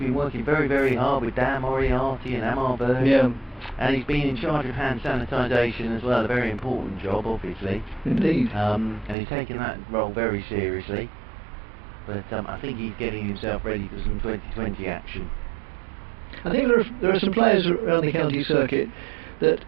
working very, very hard with Dan Moriarty and Amar Bird. Yeah, And he's been in charge of hand sanitisation as well, a very important job, obviously. indeed. And he's taken that role very seriously. But I think he's getting himself ready for some 2020 action. I think there are some players around the county circuit that,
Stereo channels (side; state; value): left; drops out; at 9.2 s